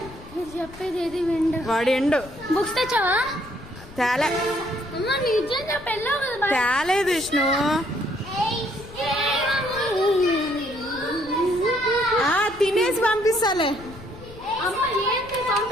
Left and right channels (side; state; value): left; noise; rumble, 18 dB below the sound